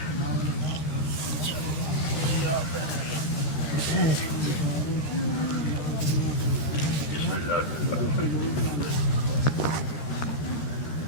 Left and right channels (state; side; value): late; right; 13 ms